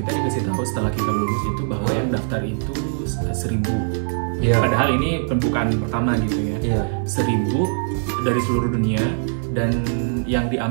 dikasih tahu setelah kita lulus itu bahwa yang daftar itu 1.000. Iya. Padahal ini pembukaan pertama gitu ya. Iya. 1.000 dari seluruh dunia dan yang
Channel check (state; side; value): silent; left; digital silence